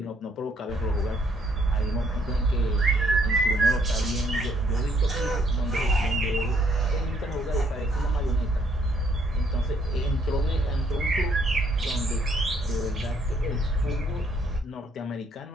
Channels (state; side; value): normal; both; correlation 0.68